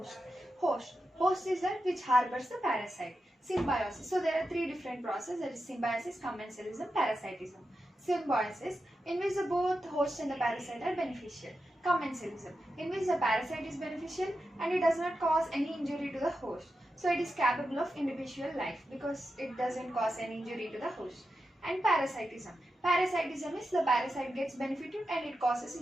Host is that which harbors the parasite. Symbiosis. So there are three different processes, that is symbiosis, commensalism, parasitism. Symbiosis, in which the both host and the parasite are beneficial. Commensalism, in which the parasite is beneficial and it does not cause any injury to the host. So it is capable of individual life because it doesn't cause any injury to the host. And parasitism. Parasitism is the parasite gets benefited and it causes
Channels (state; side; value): normal; both; correlation 0.89